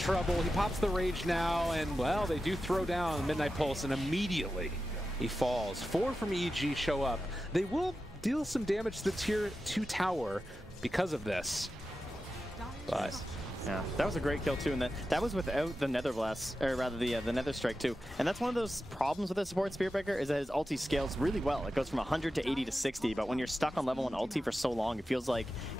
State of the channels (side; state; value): both; normal; correlation 0.92